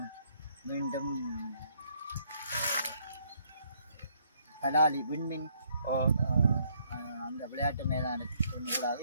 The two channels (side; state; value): both; inverted; correlation -0.68